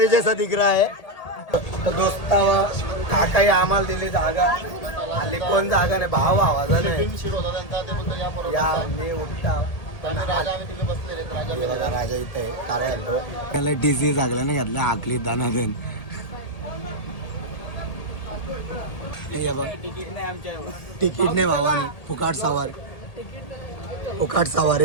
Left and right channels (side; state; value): right; late; 1.8 ms